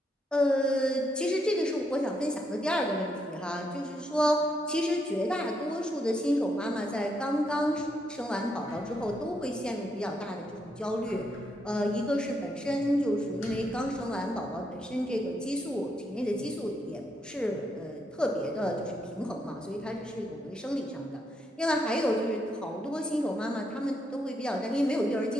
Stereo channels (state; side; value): normal; both; correlation 0.78